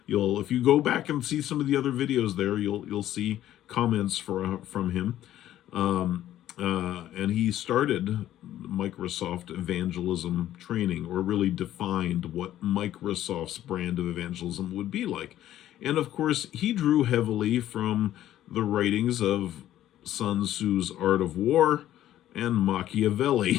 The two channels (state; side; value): quieter; right; 12.7 dB